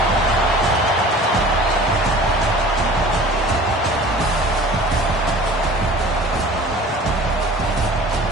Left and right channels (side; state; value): both; normal; correlation 0.44